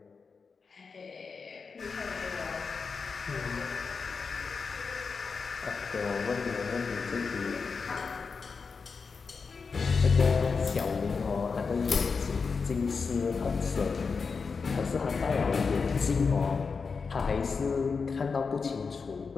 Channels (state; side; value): quieter; right; 5.1 dB